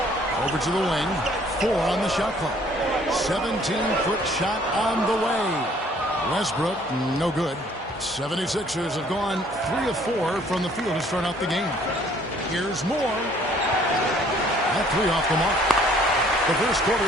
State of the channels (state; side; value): normal; both; correlation 0.59